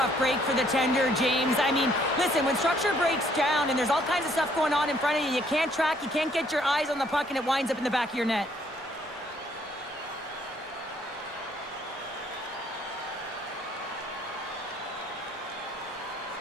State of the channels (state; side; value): normal; both; correlation 0.65